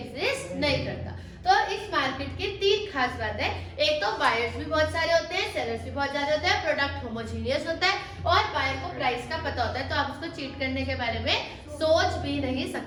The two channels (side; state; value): both; identical; correlation 1.00